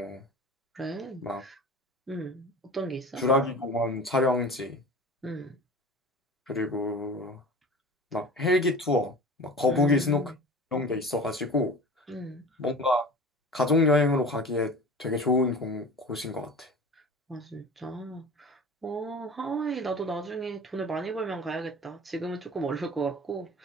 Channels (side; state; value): both; normal; correlation 0.37